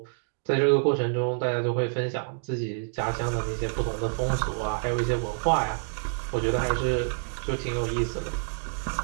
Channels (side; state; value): left; silent; digital silence